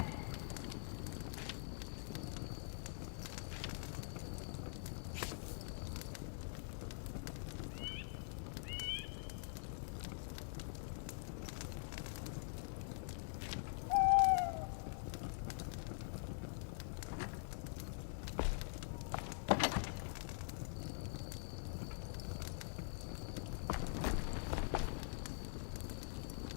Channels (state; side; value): silent; right; digital silence